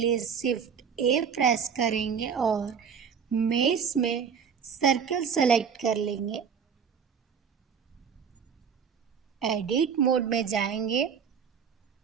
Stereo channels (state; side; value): quieter; left; 7.0 dB